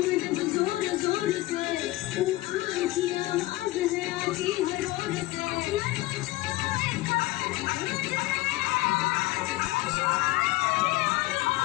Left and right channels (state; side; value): quieter; right; 18.8 dB